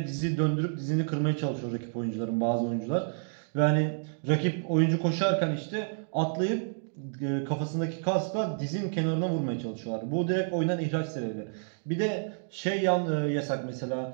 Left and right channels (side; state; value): left; silent; digital silence